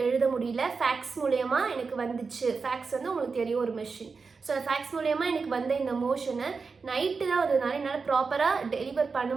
எழுத முடியல. ஃபேக்ஸ் மூலயமா எனக்கு வந்துச்சு. ஃபேக்ஸ் வந்து உங்களுக்கு தெரியும் ஒரு மிஷின். ஸோ ஃபேக்ஸ் மூலயமா எனக்கு வந்த இந்த மோஷனை நைட்டு தான் வந்ததுனால என்னால் ப்ராப்பராக டெலிவர் பண்ண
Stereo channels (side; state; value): left; quieter; 4.8 dB